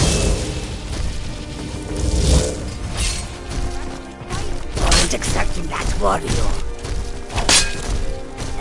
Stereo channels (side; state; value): both; identical; correlation 1.00